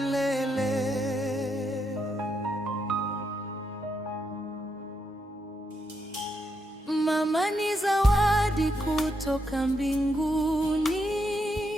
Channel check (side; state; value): both; normal; correlation 0.81